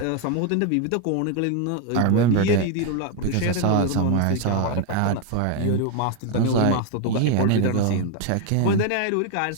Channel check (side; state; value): both; different; correlation 0.01